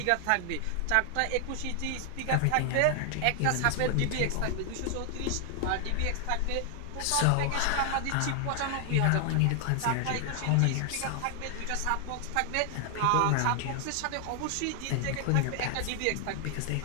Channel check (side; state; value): both; different; correlation 0.00